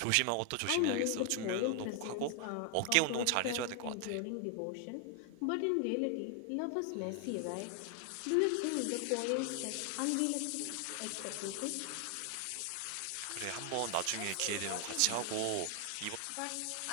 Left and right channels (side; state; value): both; different; correlation 0.00